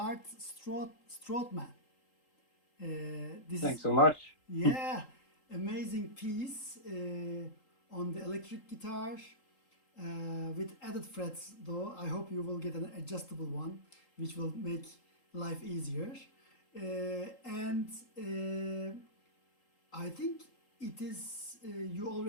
Strootman. This Thanks is, so much. yeah, amazing piece on the electric guitar with added frets, though. I hope you will get an adjustable one, which will make life easier. And I think it is, you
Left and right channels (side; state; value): right; late; 3.8 ms